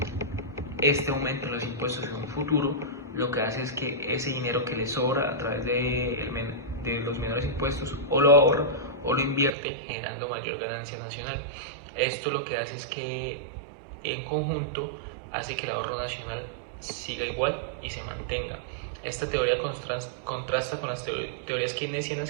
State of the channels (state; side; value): drops out; left; at 9.5 s